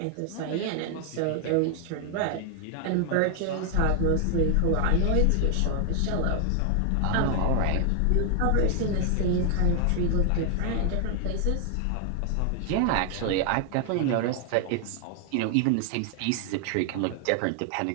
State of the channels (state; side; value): different; both; correlation 0.00